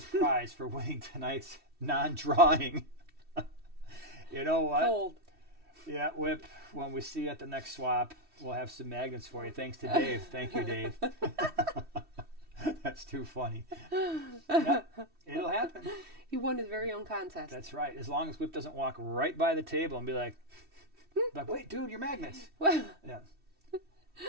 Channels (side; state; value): left; late; 3.1 ms